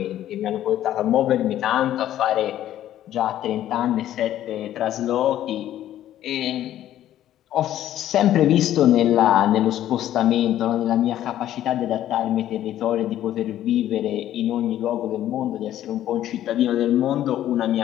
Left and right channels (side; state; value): right; quieter; 12.3 dB